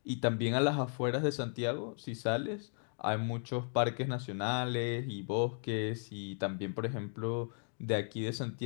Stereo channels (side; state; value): right; silent; 54 dB below the other